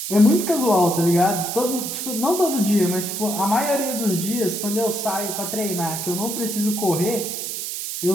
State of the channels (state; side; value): noise; right; hiss, 5 dB below the sound